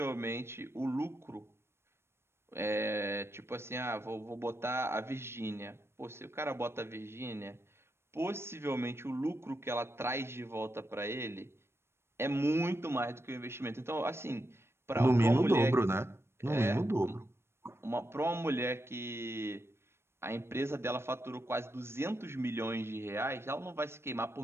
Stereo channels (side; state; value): left; late; 0.12 ms